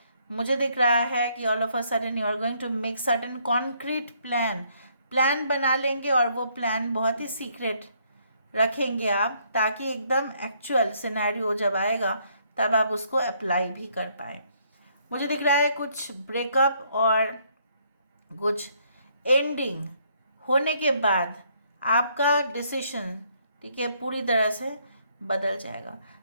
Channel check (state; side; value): inverted; both; correlation -0.69